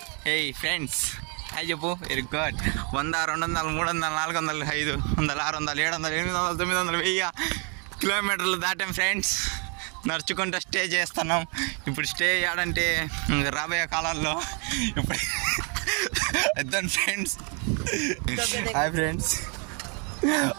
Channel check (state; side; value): quieter; left; 36.5 dB